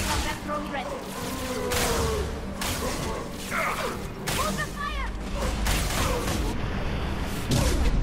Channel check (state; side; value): identical; both; correlation 1.00